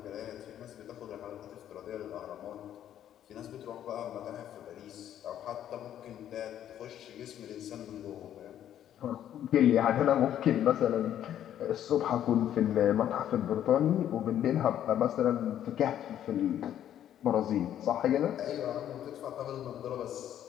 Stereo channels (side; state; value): right; quieter; 10.8 dB